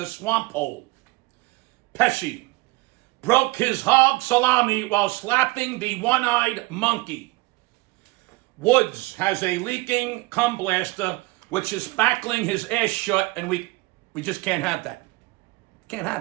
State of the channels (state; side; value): quieter; left; 22.7 dB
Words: swamp hole. Pesci broke his hog salami while slapping the one-eyed monkey. Woods has a leaking cum blaster which is spackling his ass shut, and we just can't have that. Can't